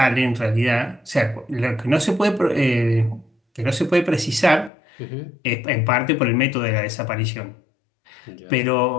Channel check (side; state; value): right; drops out; at 4.7 s